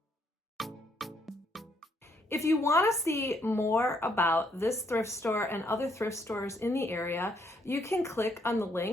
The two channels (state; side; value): normal; both; correlation 0.71